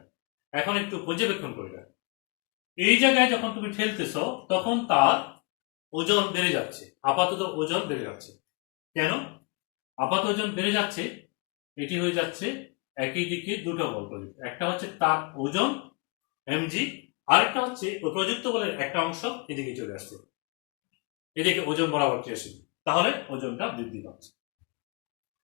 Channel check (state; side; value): quieter; right; 30.8 dB